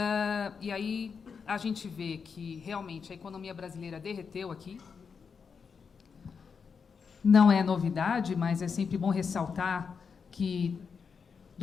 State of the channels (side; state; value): right; quieter; 5.9 dB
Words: E aí a gente vê que, realmente, a economia brasileira derreteu aqui. Não é novidade, mas é sempre bom ressaltar que